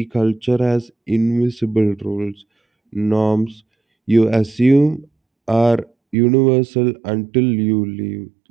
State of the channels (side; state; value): left; drops out; at 6.2 s